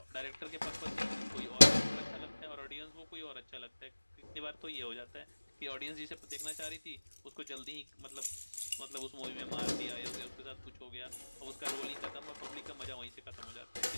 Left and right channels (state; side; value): inverted; both; correlation -1.00